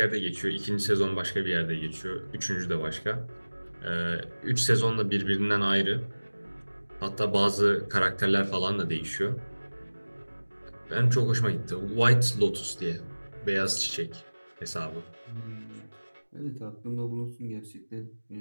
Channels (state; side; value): inverted; both; correlation -1.00